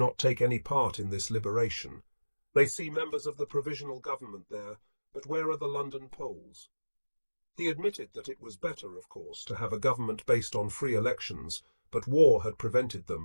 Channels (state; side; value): inverted; both; correlation -1.00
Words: take any part in this liberation. They see members of the provisional government there, but where are the London Poles? He admitted that it was better, of course, to have a government based on free elections, but war had prevented